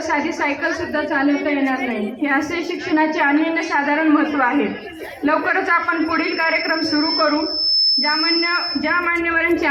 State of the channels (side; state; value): both; identical; correlation 1.00